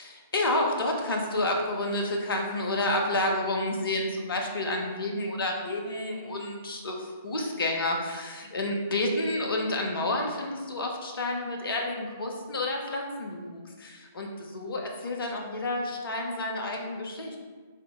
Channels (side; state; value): both; inverted; correlation -0.42